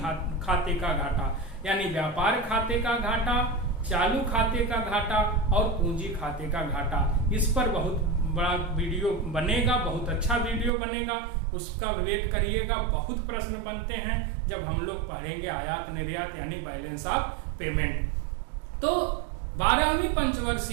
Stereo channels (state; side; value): drops out; left; at 10.7 s